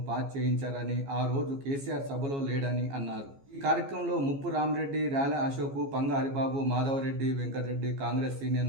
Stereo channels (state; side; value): late; left; 15 ms